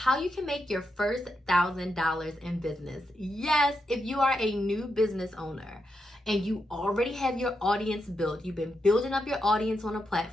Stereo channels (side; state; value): both; normal; correlation 0.84